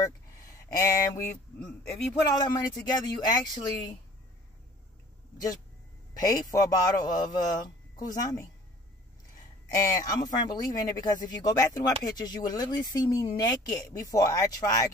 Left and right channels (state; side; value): normal; both; correlation 0.50